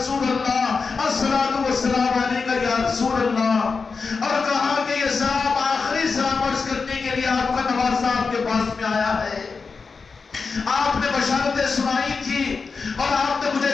اللہ، الصلاۃ والسلام علیک یا رسول اللہ۔ اور کہا کہ یہ صاحب آخری سلام عرض کرنے کے لیے آپ کا نواز صاحب کے پاس میں آیا ہے۔ آپ نے بشارتیں سنائی تھی اور آپ نے مجھے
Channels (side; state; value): right; quieter; 4.8 dB